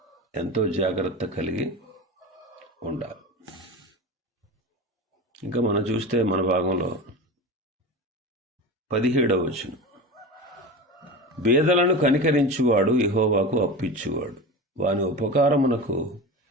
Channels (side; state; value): both; normal; correlation 0.28